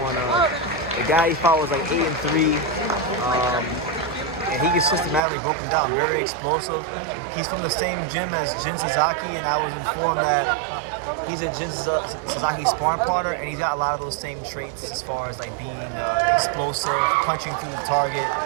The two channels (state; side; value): drops out; left; at 5.2 s